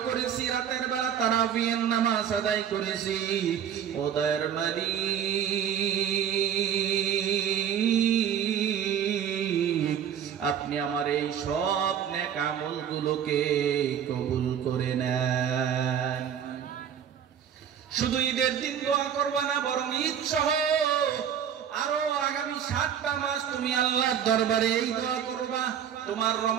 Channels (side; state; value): left; quieter; 8.9 dB